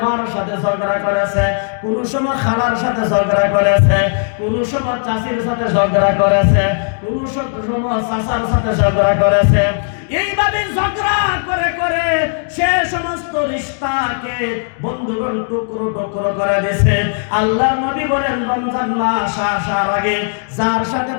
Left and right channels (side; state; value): right; silent; digital silence